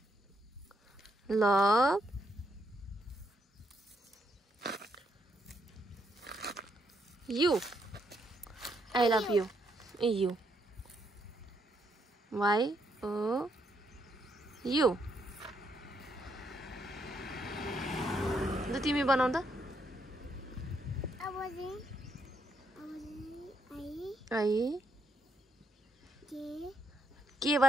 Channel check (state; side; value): normal; both; correlation 0.76